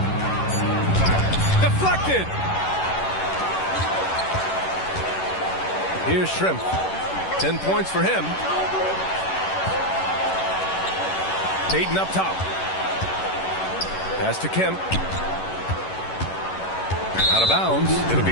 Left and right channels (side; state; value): right; late; 11 ms